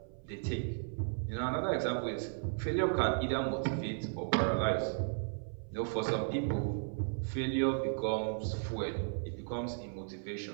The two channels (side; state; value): left; silent; 54 dB below the other